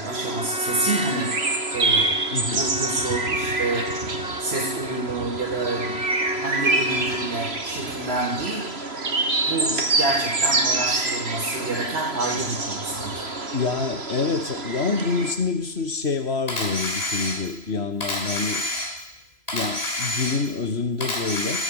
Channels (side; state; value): left; late; 3.0 ms